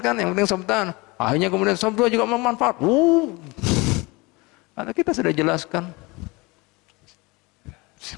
yang penting saf depan. Akhirnya kemudian saf dua juga bermanfaat. Karena kita sudah jelaskan.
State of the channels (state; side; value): quieter; right; 24.9 dB